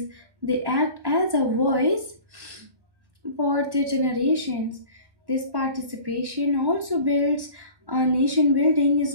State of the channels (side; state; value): left; late; 1.1 ms